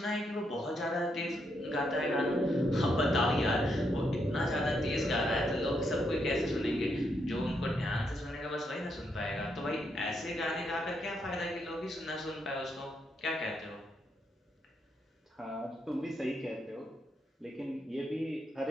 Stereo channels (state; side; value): normal; both; correlation 0.79